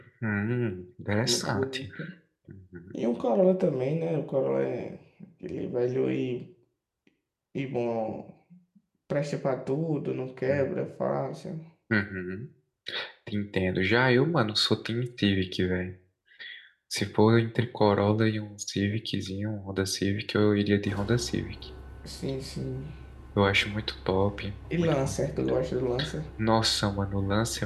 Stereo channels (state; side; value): identical; both; correlation 1.00